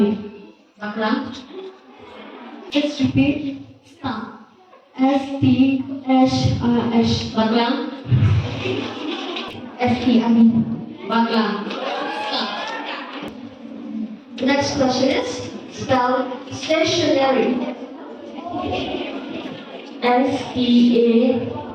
Bakram. Let's repeat. Star. STSRS. Bakram. STRT. Bakram. Star. The next question is spelled stationary.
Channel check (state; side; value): identical; both; correlation 1.00